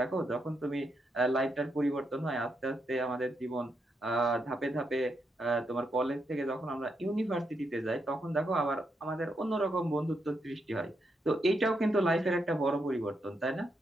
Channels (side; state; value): both; normal; correlation 0.81